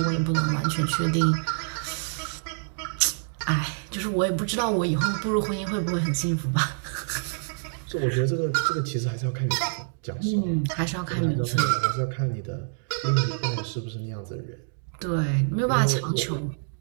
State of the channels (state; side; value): silent; left; digital silence